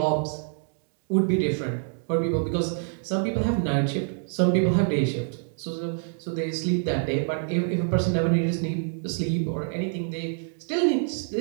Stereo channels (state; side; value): silent; left; 60 dB below the other